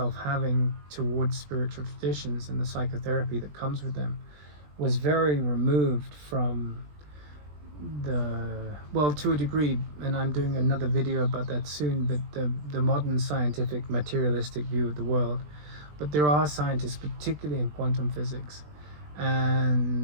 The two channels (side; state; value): left; late; 20 ms